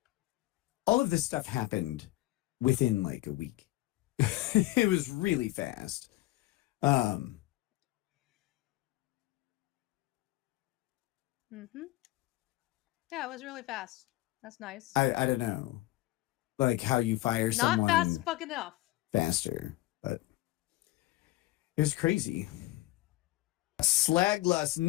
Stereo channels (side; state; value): right; quieter; 17.6 dB